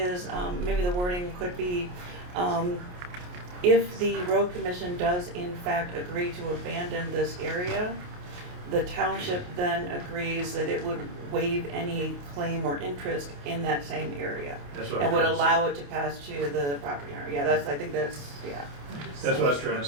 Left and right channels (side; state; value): left; late; 28 ms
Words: maybe the wording could be, if the road commission does in fact agree to abandon this area, the township then agrees that it would waive any claim or interest in that same area. That's what And would I'm trying to allow it to pass to the property owner. Yeah, I think that's, yeah. That's what I was trying to